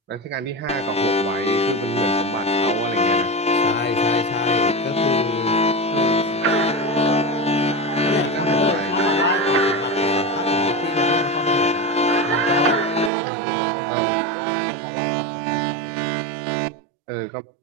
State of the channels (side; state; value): left; drops out; at 13.1 s